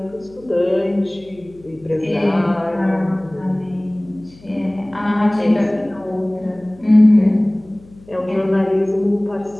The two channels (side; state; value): left; noise; hum, 25 dB below the sound